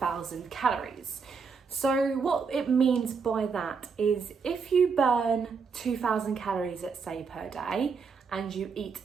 calories. So what it means by that is if you burn 2,000 calories, let's say, per day, and you eat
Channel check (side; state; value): left; quieter; 5.4 dB